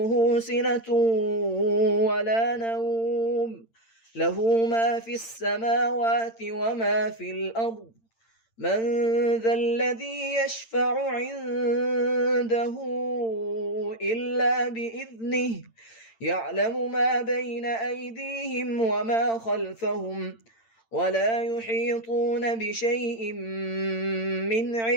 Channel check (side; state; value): right; late; 8.8 ms